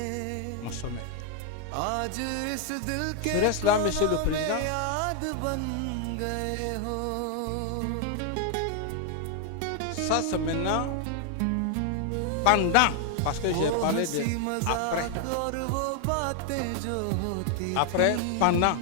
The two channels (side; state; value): both; different; correlation 0.00